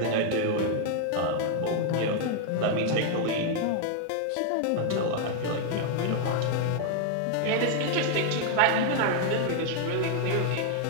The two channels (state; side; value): different; both; correlation 0.00